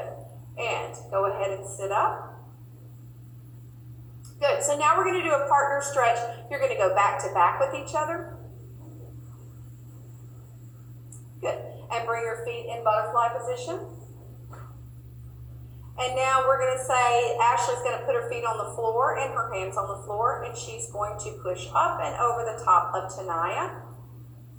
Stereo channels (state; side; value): identical; both; correlation 1.00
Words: And go ahead and sit up. Good. So now we're going to do a partner stretch. You're going to go back to back with each other. Good. And bring your feet in butterfly position. And now we're going to say, Ashley's going to put her feet on the floor and her hands on the floor, and she's going to push up and over the top of Tanaya.